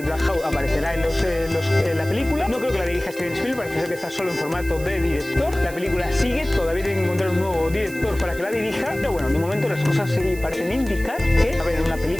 Black Hawk aparecerá en la película. No creo que la dirija Steven Spielberg, parece ser que está solo en formato de director. La película sigue, todavía tiene que encontrar un nuevo director para que la dirija. Pero bueno, de momento las cosas sí parecen indicar que va a haber una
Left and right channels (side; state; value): right; noise; hiss, 17 dB below the sound